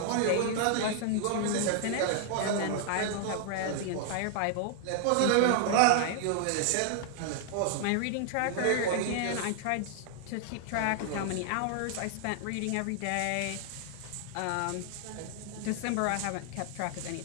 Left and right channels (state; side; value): different; both; correlation 0.00